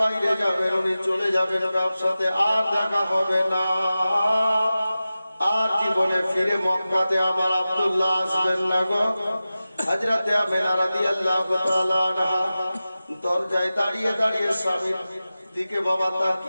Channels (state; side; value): inverted; both; correlation -0.94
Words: যাবেন, উনি চলে যাবেন ব্যবসাতে, আর দেখা হবে না, আর জীবনে ফিরে মক্কাতে আমার আব্দুল্লাহ আসবেন না গো। হযরতে আমেনা রাদিয়াল্লাহু তাআলা আনহা দরজায় দাঁড়িয়ে দাঁড়িয়ে স্বামীর দিকে বাবা